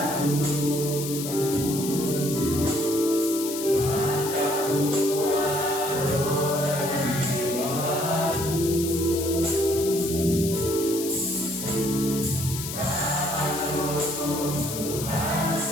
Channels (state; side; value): noise; left; hiss, 7 dB below the sound